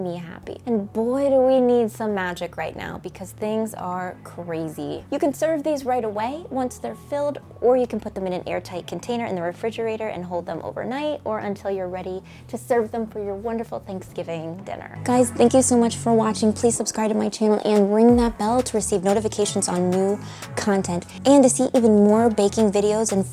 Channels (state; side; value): identical; both; correlation 1.00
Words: me happy. And boy, do we need some magic right now because things are crazy. You can serve these right away once they're filled, or you can put them in an airtight container in the refrigerator and hold them overnight or until you're ready to serve them for your wonderful Thanksgiving dinner. Guys, thank you so much much for watching. Please subscribe to my channel and ring that bell to receive notifications on new content. And to see even more baking videos and